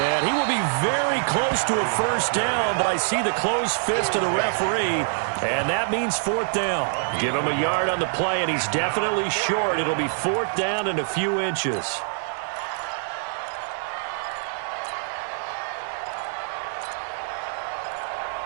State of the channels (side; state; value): left; silent; 59 dB below the other